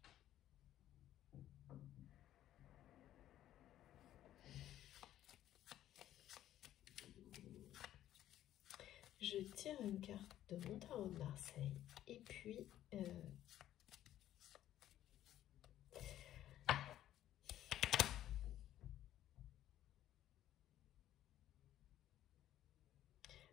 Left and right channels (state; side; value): quieter; right; 12.5 dB